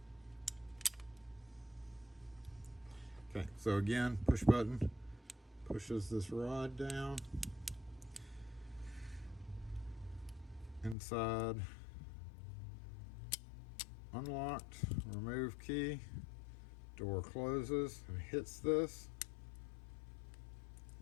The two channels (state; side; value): drops out; right; at 11.0 s